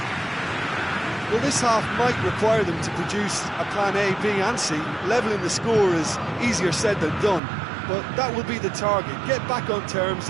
Well, this half might require them to produce a plan A, B and C. Levelling the score is easier said than done, but that will be the target. Get back on terms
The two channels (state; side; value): drops out; left; at 7.4 s